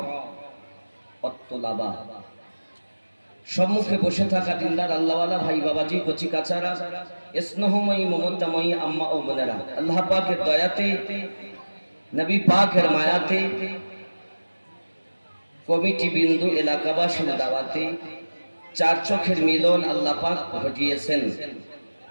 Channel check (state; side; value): inverted; both; correlation -1.00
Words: অত্তলাবা, সম্মুখে বসে থাকা দিনদার আল্লাহওয়ালা ভাই বাবাজি, কচি কাচারা, স্নেহময়ী মমতাময়ী আম্মা ও বোনেরা, আল্লাহ পাকের দয়াতে, নবী পাকের মায়াতে, কমিটি বিন্দু এলাকাবাসীর দাওয়াতে চার চোখের মিলন আল্লাহ পাক ঘটিয়েছেন।